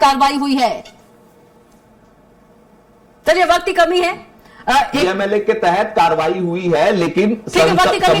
कार्रवाई हुई है। चलिए वक्त की कमी है, पीएमएलए के तहत कार्रवाई हुई है, लेकिन संपत्ति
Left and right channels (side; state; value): both; identical; correlation 1.00